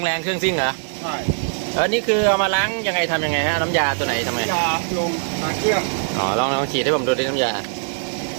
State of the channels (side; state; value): left; silent; digital silence